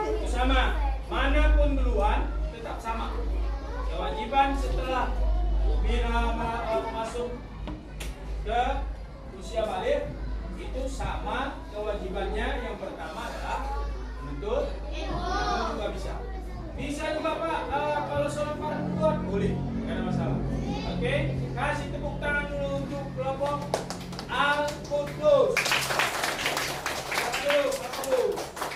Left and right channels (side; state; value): both; identical; correlation 1.00